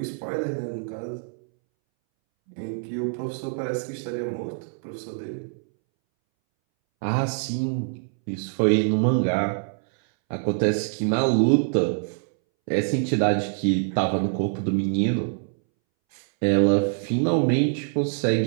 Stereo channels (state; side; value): silent; left; 62 dB below the other